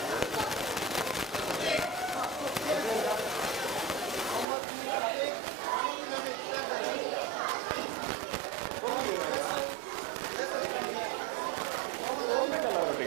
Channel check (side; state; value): left; drops out; at 4.5 s